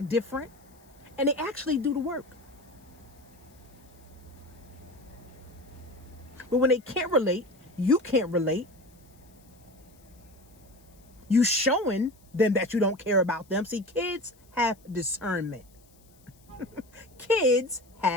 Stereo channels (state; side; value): noise; left; hiss, 29 dB below the sound